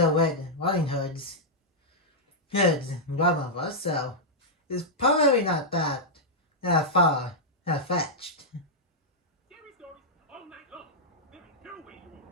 Red Riding Hood's grandmother, so it's probably not that far fetched.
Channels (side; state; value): both; normal; correlation -0.08